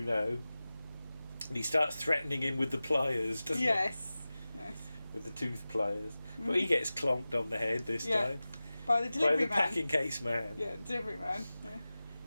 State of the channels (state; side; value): inverted; both; correlation -0.96